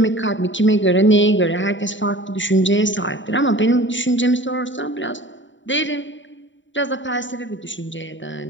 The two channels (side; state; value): right; late; 0.54 ms